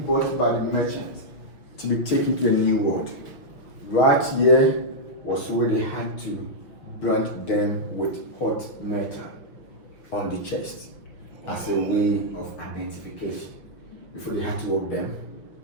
by the merchants to be taken to a new world. Right here was where they had to brand them with hot metal on the chest as a way of identification before they had to walk them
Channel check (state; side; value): late; right; 5.9 ms